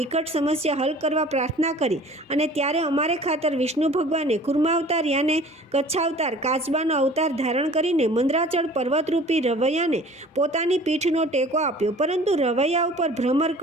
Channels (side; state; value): both; normal; correlation 0.47